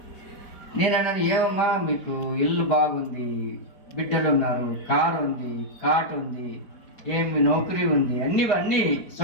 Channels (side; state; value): right; late; 5.0 ms